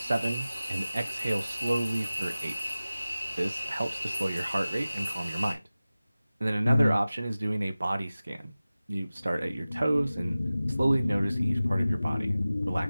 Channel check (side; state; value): both; inverted; correlation -0.97